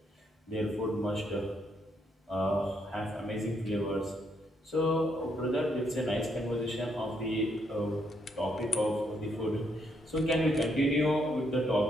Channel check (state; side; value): normal; both; correlation 0.75